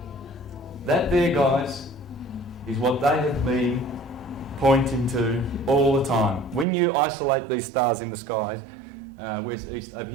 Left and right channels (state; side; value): drops out; left; at 6.7 s